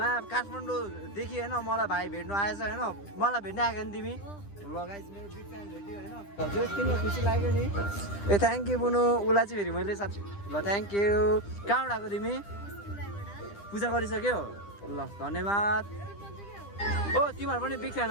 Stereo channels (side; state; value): right; late; 10 ms